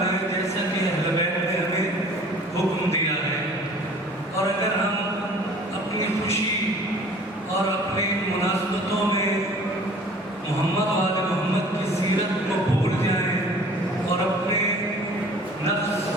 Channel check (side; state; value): both; normal; correlation 0.49